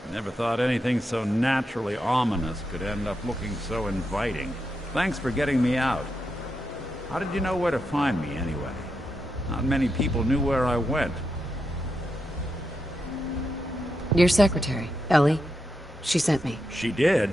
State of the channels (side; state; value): both; normal; correlation 0.85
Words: Never thought anything so naturally ominous could end up looking so inviting. Thanks for getting me out. How did you know where to find me, anyway? Not many people knew where I went. Your secretary, Ellie. She sent me. She did?